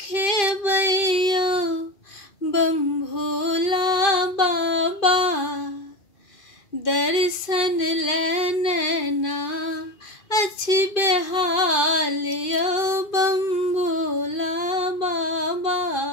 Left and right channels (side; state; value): right; late; 2.5 ms